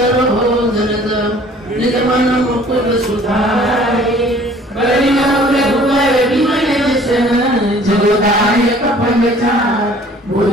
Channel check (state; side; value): normal; both; correlation 0.53